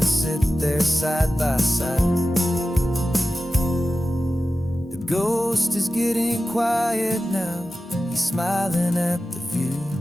sit there side by side. The ghost is getting quiet now. He's smiling at the view.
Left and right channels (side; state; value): both; normal; correlation 0.94